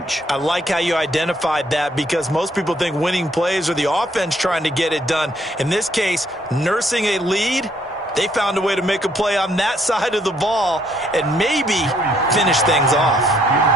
I like how you identified that because most people think winning plays are the offense trying to get it done. In this case, nursing a lead, they found a way to make a play on that side of the ball and maybe finish things off.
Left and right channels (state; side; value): normal; both; correlation 0.68